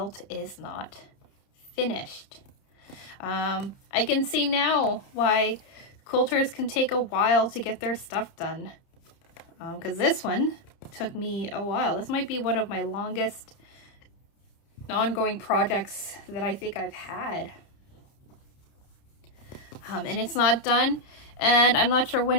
is not finished. I can see now why quilters can take a while to get their stuff done, because this one took me a while. This might be one of my longest ongoing projects that I think I've had, and it's not done, and I'm not sure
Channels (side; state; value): right; late; 30 ms